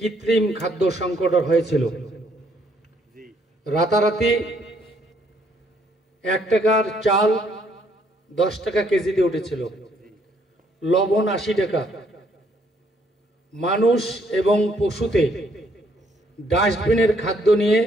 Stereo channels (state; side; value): normal; both; correlation 0.68